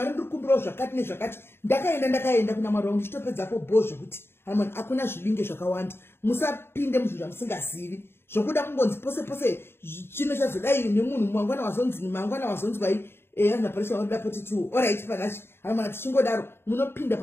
ndiri kukumbirawo zvakati nezvakati. Ndakaenda kuna Mwari wangu ndichitopedzapo bho zvekuti Mwari hakuna zvibinge zvakawanda, musapinde muzvinhu zvamusingazivi zvokuda kungonzi pose chino chazodai nemunhu mangwana wazonzwai naparisha wanoda poti tu alright panachi Mwari tichingodaro munopinda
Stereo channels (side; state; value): right; late; 0.11 ms